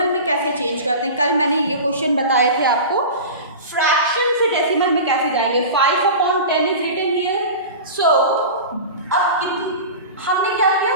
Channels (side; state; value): both; inverted; correlation -0.32